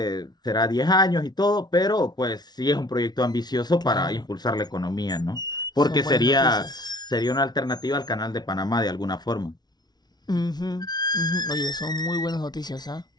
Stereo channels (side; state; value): right; late; 0.19 ms